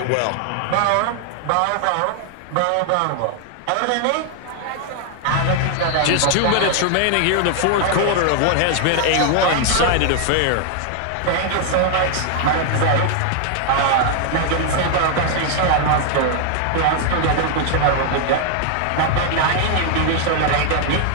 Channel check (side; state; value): both; different; correlation 0.00